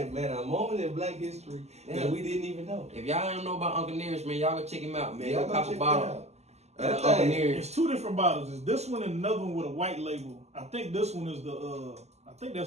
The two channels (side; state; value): left; late; 0.32 ms